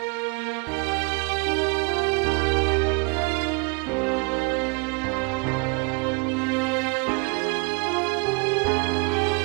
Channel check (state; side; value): quieter; left; 32.8 dB